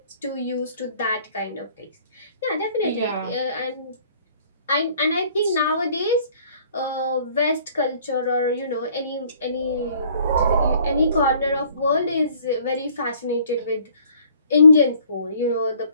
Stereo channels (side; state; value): both; inverted; correlation -0.57